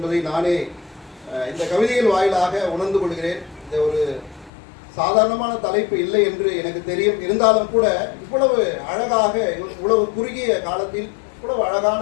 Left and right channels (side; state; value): right; drops out; at 4.5 s